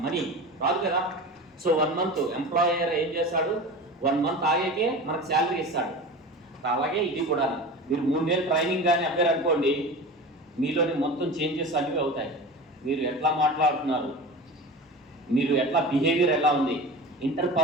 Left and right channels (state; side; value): normal; both; correlation 0.32